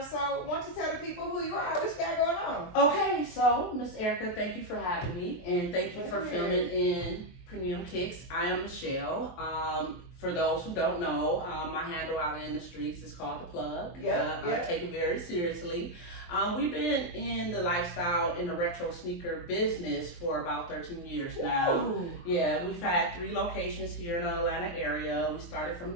So why don't you tell the people who you are, what you got going on? Okay, so Miss Erica, thank you for having me, and thank you for filming in Premium Kicks. I am Michelle. For those who don't know, my handle out in the streets is called The Plug. I take it very seriously. We've been in the lifestyle in the retro sneaker business for about 13 years now. Ooh. Yeah, we've had 3 locations here in the Atlanta area. We started from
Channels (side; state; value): right; late; 23 ms